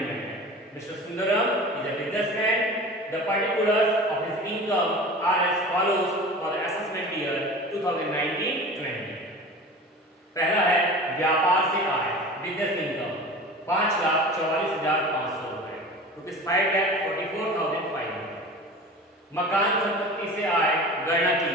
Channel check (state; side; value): normal; both; correlation 0.36